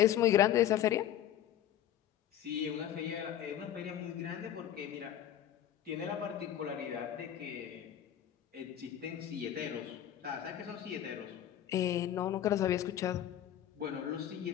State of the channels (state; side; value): quieter; right; 11.1 dB